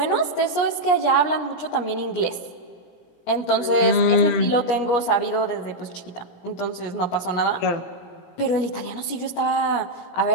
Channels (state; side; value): late; right; 17 ms